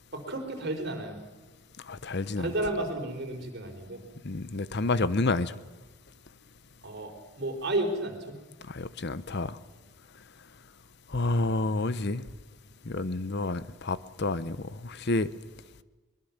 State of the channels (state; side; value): normal; both; correlation 0.30